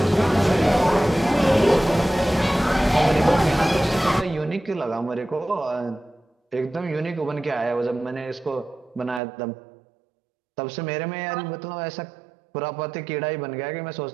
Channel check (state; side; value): drops out; left; at 9.2 s